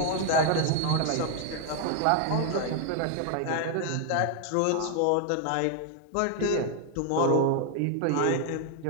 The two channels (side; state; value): both; different; correlation 0.01